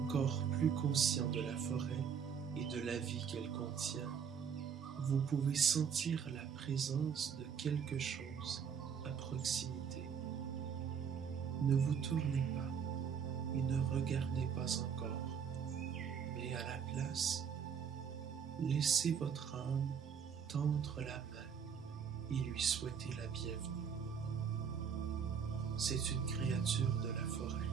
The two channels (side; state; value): left; quieter; 7.1 dB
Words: plus conscient de la forêt et de la vie qu'elle contient, vous pouvez sentir la présence de quelque chose à proximité. Ne vous tournez pas et ne regardez pas encore, mais à la place, laissez votre âme tendre la main et lui souhaiter la bienvenue. C'est une créature de la forêt,